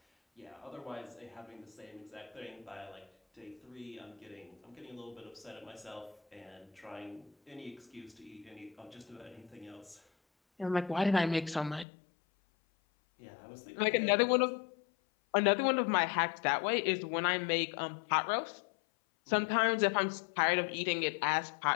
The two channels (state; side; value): drops out; right; at 11.9 s